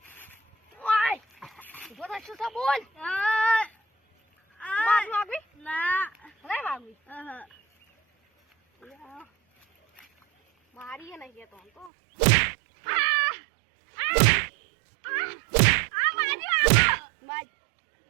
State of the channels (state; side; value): drops out; left; at 11.9 s